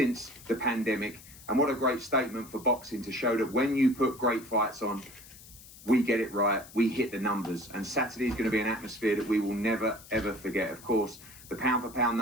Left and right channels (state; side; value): noise; left; hiss, 19 dB below the sound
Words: the pandemic. And what a great statement for boxing to show that when you put great fights on, we get it right, we hit the numbers. And Saturday is going to be an atmosphere that we will never, ever forget. Of course, the pound-for-pound